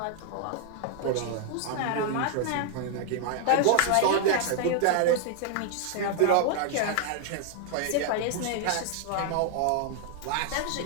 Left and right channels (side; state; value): both; different; correlation 0.00